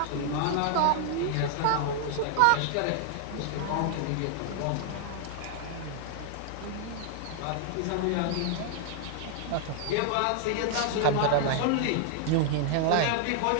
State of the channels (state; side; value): different; both; correlation -0.01